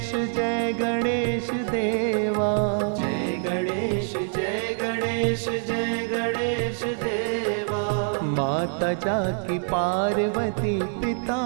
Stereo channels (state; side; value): silent; left; digital silence